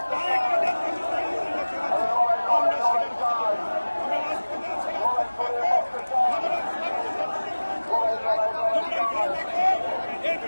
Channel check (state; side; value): inverted; both; correlation -1.00